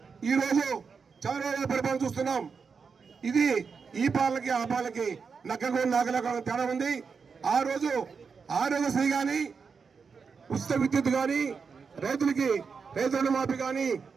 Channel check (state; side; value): quieter; left; 5.5 dB